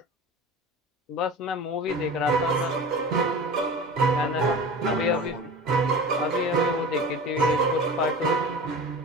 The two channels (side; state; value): both; normal; correlation 0.34